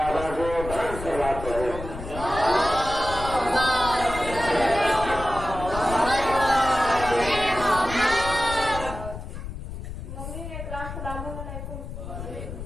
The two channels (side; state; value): left; noise; rumble, 9 dB below the sound